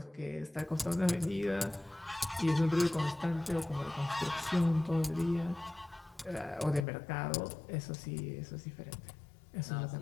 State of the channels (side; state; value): right; drops out; at 6.9 s